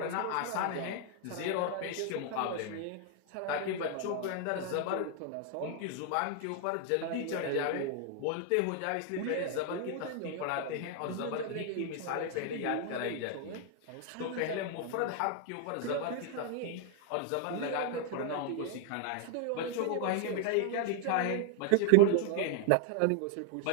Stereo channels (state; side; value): different; both; correlation 0.00